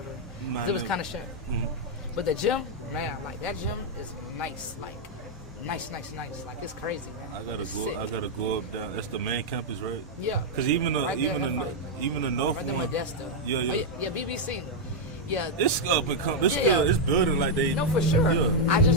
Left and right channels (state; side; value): normal; both; correlation -0.02